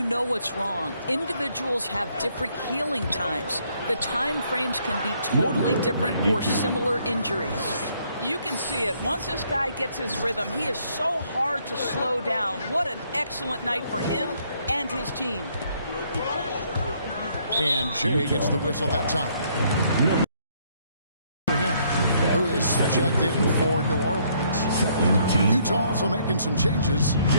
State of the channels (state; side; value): inverted; both; correlation -0.68